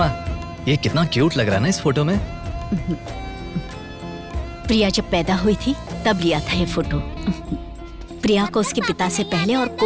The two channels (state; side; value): identical; both; correlation 1.00